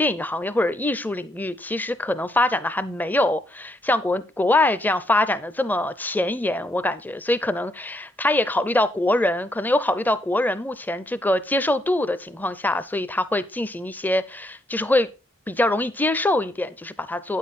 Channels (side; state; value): both; normal; correlation 0.75